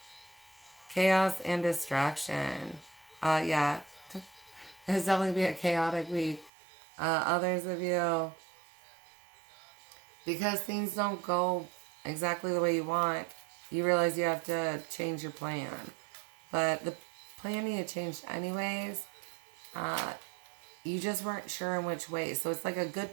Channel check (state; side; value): drops out; left; at 6.5 s